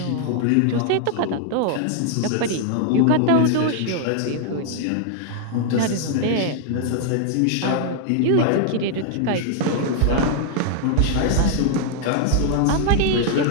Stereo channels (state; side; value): different; both; correlation 0.00